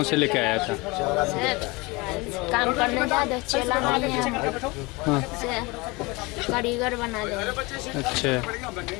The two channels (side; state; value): right; quieter; 25.0 dB